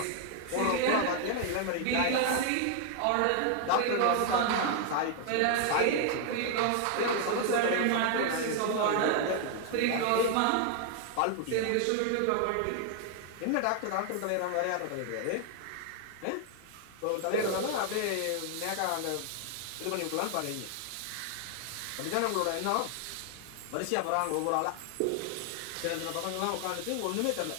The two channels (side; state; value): both; different; correlation 0.00